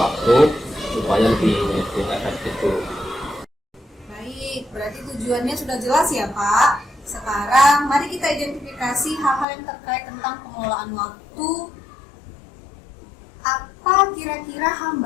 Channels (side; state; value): right; drops out; at 9.5 s